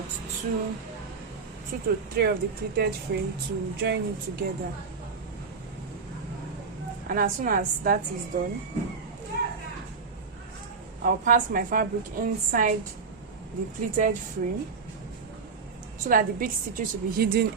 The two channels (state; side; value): quieter; left; 5.0 dB